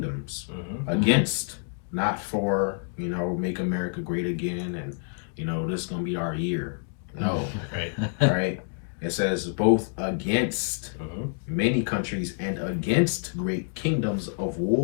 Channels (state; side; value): silent; right; 60 dB below the other